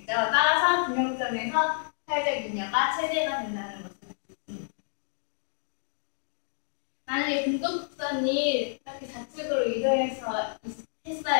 따라서 균형점에서 사회적 잉여가 최대가 된다는 것을 알 수 있습니다. 만약에 공급선이 이렇게 좌측으로 이동해서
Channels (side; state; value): right; silent; digital silence